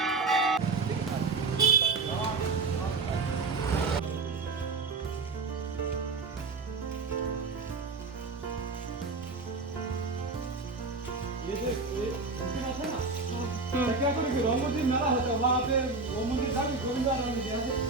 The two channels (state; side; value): quieter; left; 3.9 dB